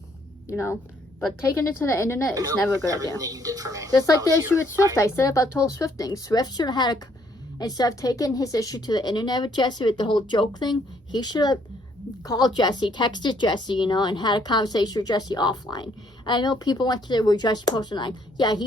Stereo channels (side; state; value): both; normal; correlation 0.67